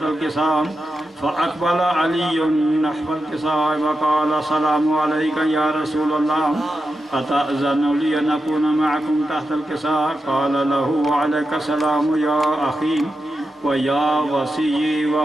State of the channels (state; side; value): normal; both; correlation 0.89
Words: الكساء. فأقبل علي نحو الكساء وقال السلام عليك يا رسول الله أتأذن لي أن أكون معكم تحت الكساء؟ قال له وعليك السلام يا أخي ويا وصي